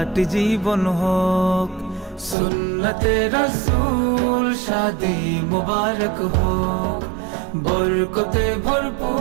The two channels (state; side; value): drops out; left; at 2.4 s